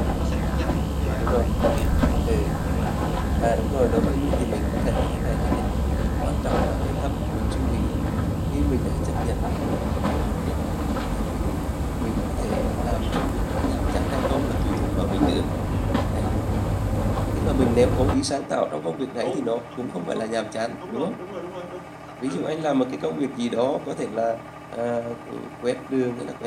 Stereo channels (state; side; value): identical; both; correlation 1.00